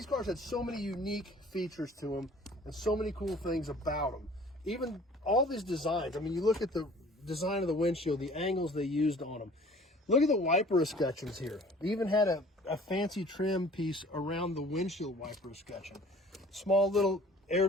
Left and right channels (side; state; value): both; normal; correlation 0.50